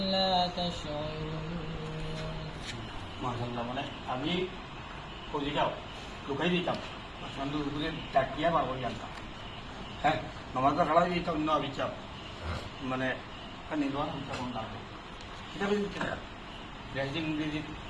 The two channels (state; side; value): identical; both; correlation 1.00